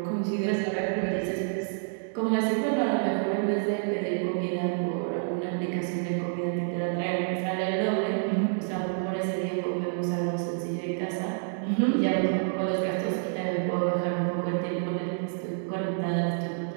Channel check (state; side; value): silent; left; digital silence